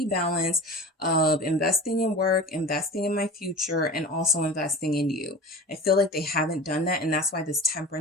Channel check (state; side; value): normal; both; correlation 0.34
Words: balance of investing in work, investing in my future, and also investing in you. I feel like they haven't done that, and that's why this